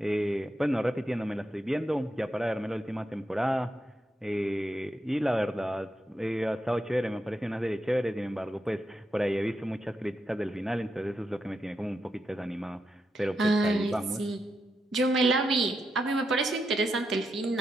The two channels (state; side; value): normal; both; correlation 0.84